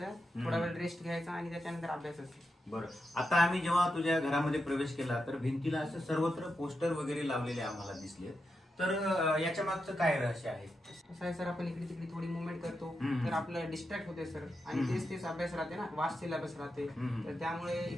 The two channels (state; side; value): normal; both; correlation 0.87